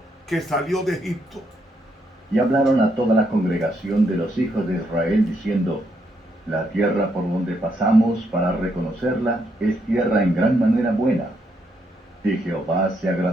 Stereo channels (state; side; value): normal; both; correlation 0.76